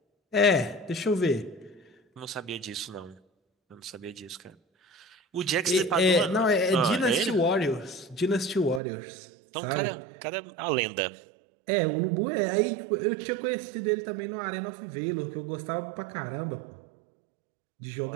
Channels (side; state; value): left; drops out; at 8.8 s